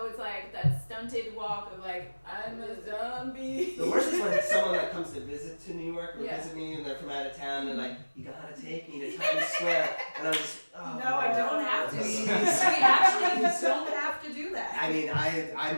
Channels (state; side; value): inverted; both; correlation -1.00